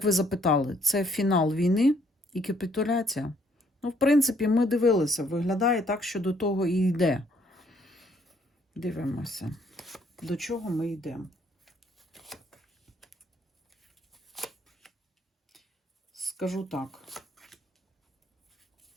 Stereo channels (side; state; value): both; normal; correlation 0.66